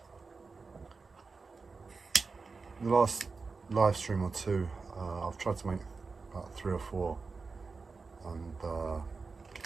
the last live stream or two, I've tried to make about 3 or 4, and the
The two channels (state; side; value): quieter; left; 4.4 dB